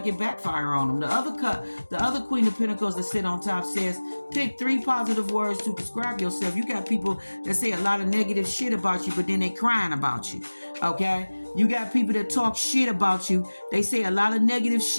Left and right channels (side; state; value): both; inverted; correlation -1.00